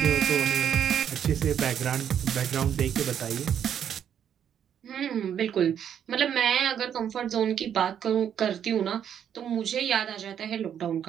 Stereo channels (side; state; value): left; quieter; 9.0 dB